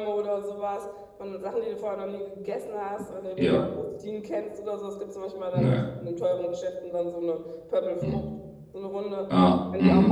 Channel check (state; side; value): identical; both; correlation 1.00